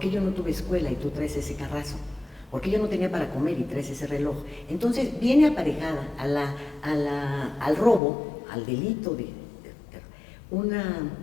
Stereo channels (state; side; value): drops out; right; at 8.0 s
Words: yo no tuve escuela y tú traes ese carrazo? ¿Por qué yo no tenía para comer y traes ese reloj? Entonces viene aparejada al robo, al delito de una